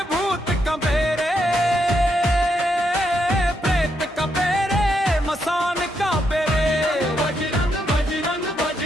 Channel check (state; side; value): normal; both; correlation 0.79